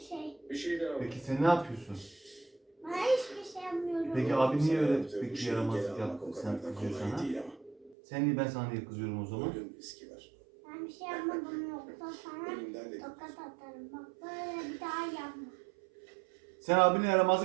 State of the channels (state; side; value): drops out; left; at 8.0 s